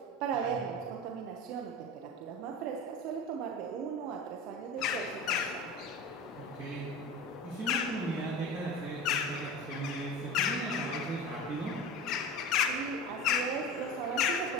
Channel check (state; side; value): normal; both; correlation 0.30